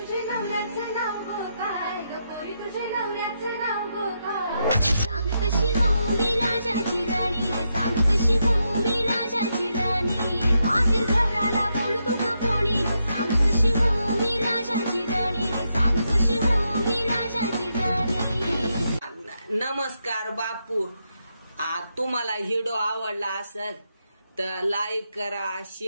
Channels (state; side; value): inverted; both; correlation -0.83